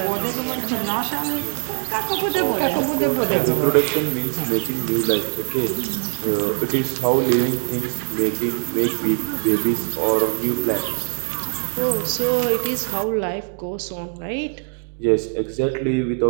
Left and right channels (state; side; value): silent; left; digital silence